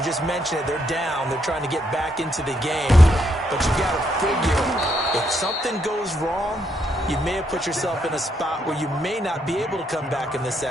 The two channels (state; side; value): normal; both; correlation 0.76